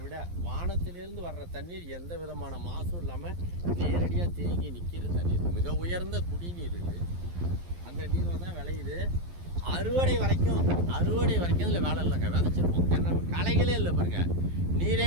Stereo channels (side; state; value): left; late; 12 ms